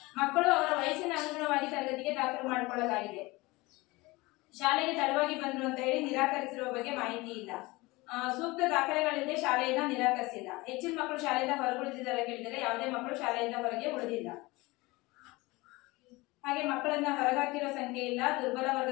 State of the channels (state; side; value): quieter; right; 22.3 dB